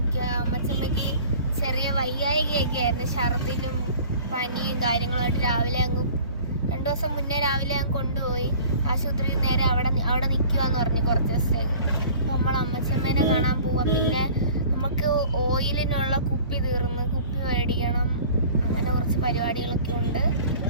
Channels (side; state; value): both; inverted; correlation -0.46